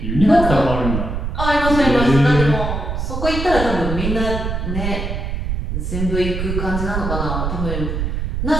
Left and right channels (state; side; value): noise; right; rumble, 3 dB below the sound